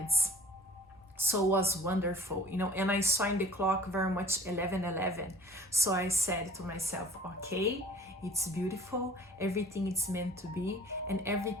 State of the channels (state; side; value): normal; both; correlation 0.48